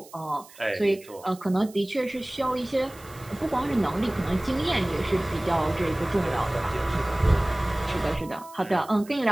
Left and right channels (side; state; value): right; noise; hiss, 22 dB below the sound